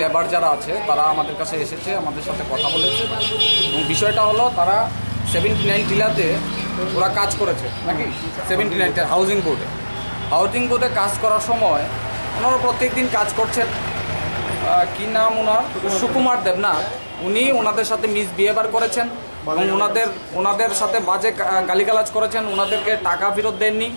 লেবার যারা আছে তারা আমাদের কাছে এসেছে, আমাদের সাথে কথা বলেছে এবং বিষয়টা হলো তারা 79 টিলাতে ওরা কাজ করেছে নাকি 79 হাউজিং বোর্ডে কাজ করার সময় ওনারা প্রত্যেক দিন কাজ করছেন। কী নাম ওনার? সুকুমার দেবনাথ। উনি ওনাদের সাথে মিসবিহেভিয়ার করেছেন এবং ওনাদের সাথে বাজে গালিগালাজ করেছেন, ওনাদেরকে টাকা ফেরত দেননি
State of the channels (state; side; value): inverted; both; correlation -1.00